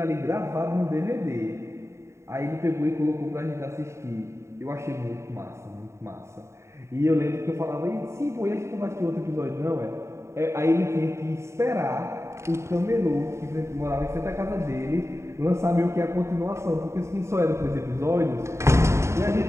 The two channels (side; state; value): left; late; 0.14 ms